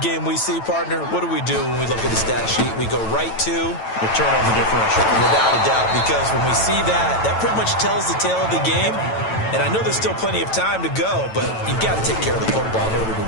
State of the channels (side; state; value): right; late; 9.0 ms